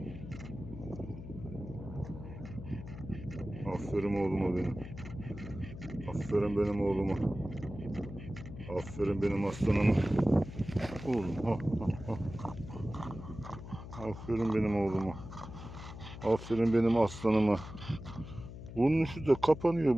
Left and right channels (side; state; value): left; noise; hum, 12 dB below the sound